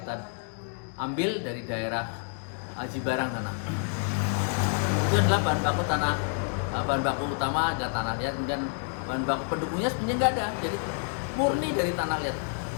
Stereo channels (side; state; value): right; silent; 59 dB below the other